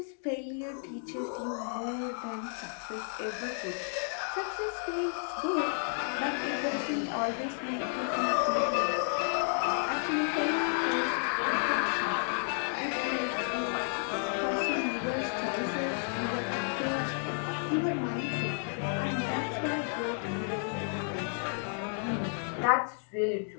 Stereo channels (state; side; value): silent; right; 56 dB below the other